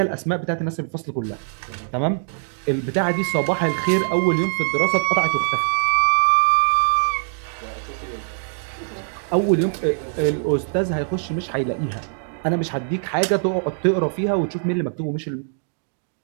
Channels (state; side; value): silent; left; digital silence